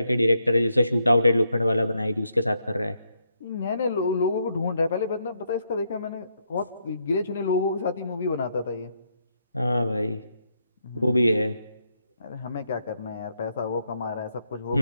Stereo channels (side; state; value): both; inverted; correlation -0.77